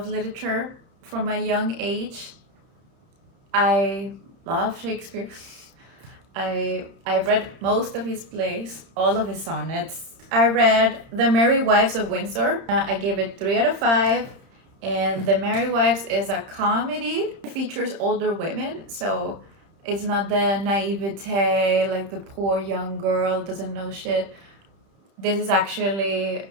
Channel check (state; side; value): late; left; 31 ms